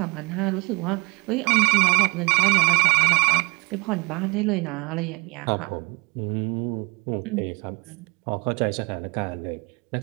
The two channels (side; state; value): left; quieter; 28.1 dB